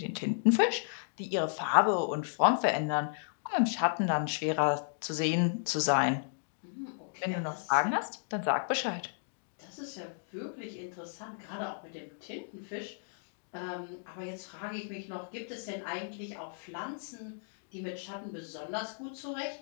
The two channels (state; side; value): silent; right; digital silence